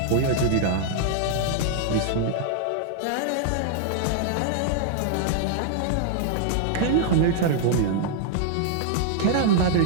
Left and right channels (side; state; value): both; different; correlation -0.01